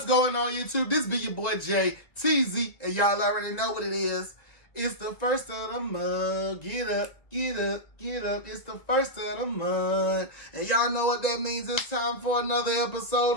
going on, YouTube? This be your boy Jay TZ, and y'all already know what it is. It's the first of the month. Get up, get up, get up. It's the first of the month. And y'all know what that means. It's time for another episode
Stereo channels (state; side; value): late; right; 1.9 ms